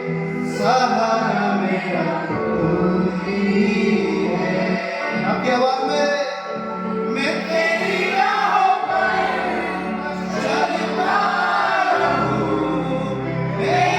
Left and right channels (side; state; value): both; identical; correlation 1.00